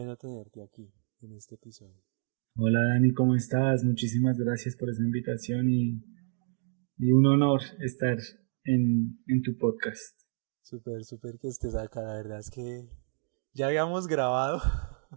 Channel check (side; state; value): left; silent; digital silence